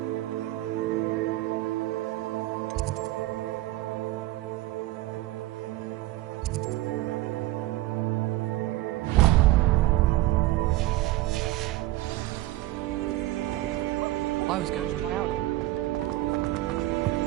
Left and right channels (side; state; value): left; quieter; 16.7 dB